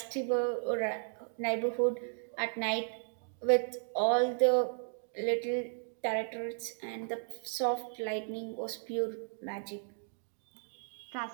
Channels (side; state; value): left; silent; 55 dB below the other